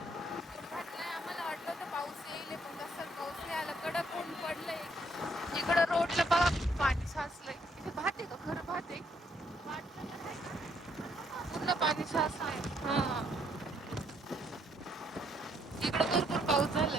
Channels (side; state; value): both; normal; correlation 0.70